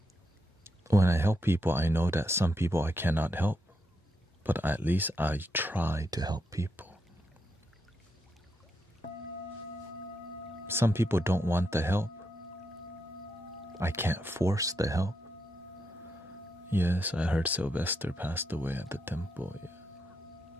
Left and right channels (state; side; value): normal; both; correlation 0.81